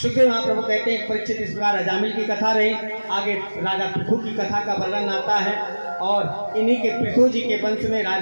सुखदेव महाप्रभु कहते हैं परीक्षित इस प्रकार अजामिल की कथा रही। आगे राजा पृथु की कथा का वर्णन आता है, और इन्हीं के पृथु जी के वंश में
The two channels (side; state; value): both; inverted; correlation -1.00